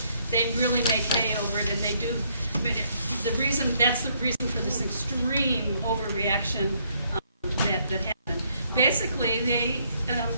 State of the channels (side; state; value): both; inverted; correlation -0.69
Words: they really make hay over it, and they do. I mean, that's the reason for this extreme overreaction that happened. Basically, they